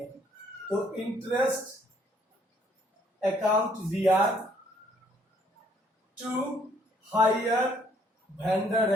तो interest account DR to hire vendor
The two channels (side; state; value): both; normal; correlation 0.65